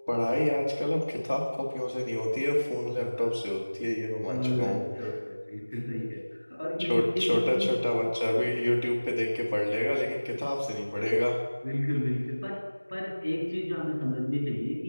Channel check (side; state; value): both; inverted; correlation -1.00